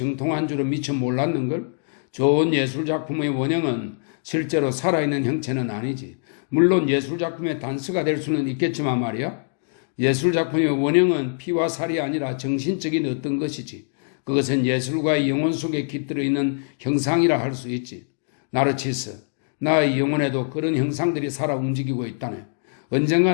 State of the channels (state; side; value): silent; right; digital silence